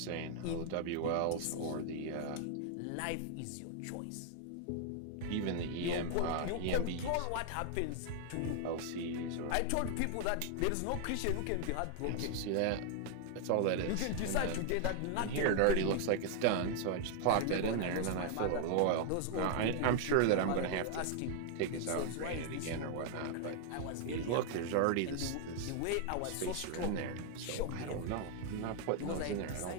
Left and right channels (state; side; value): different; both; correlation 0.00